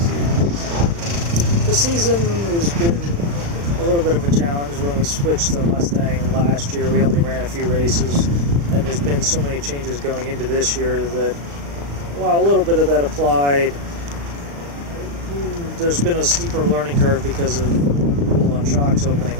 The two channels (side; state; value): left; late; 35 ms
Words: things evolving? The season has been a little bit of a challenge. When we switched to Mustang last year, we only ran a few races, and there's been so many changes going into this year that while a little bit of that applied, there's been a steeper learning curve because of the rule on shocks opening